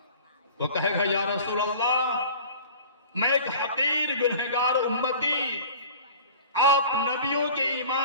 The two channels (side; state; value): both; inverted; correlation -0.42